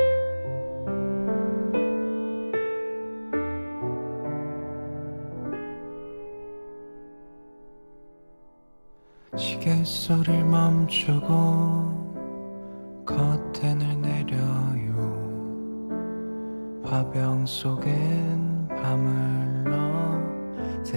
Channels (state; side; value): inverted; both; correlation -1.00